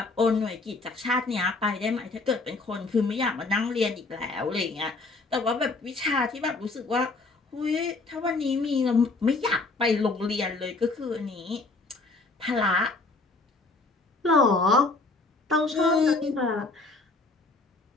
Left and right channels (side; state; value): right; quieter; 3.5 dB